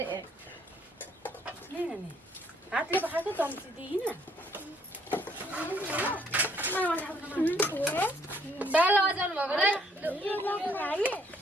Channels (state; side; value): normal; both; correlation 0.66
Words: नि हातले पकाएको चम्ची दिइन दाल बजाउनु भएको रे